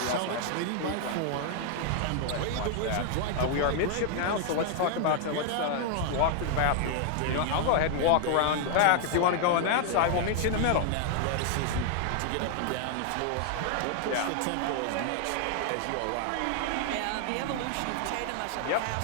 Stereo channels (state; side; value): different; both; correlation 0.00